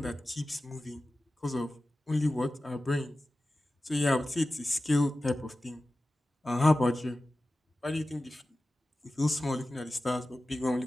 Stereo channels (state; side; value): normal; both; correlation 0.95